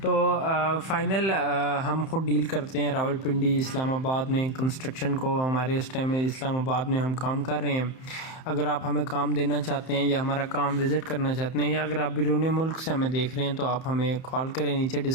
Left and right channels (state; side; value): late; right; 31 ms